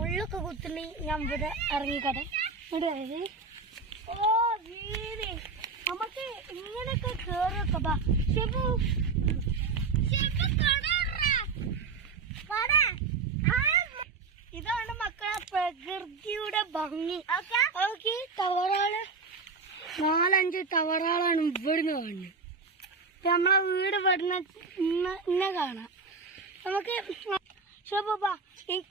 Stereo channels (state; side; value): quieter; left; 4.6 dB